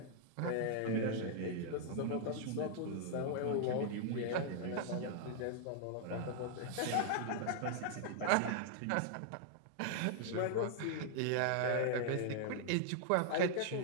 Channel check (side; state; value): both; different; correlation -0.01